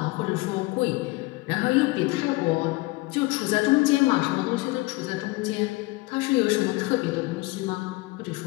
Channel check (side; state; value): right; quieter; 22.5 dB